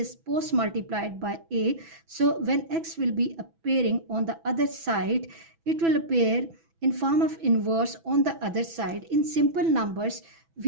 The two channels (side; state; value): left; late; 6.1 ms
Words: post-multiplied by a. So when x will be appearing on the other side, it will appear in form of inverse on the other side. In simple numbers,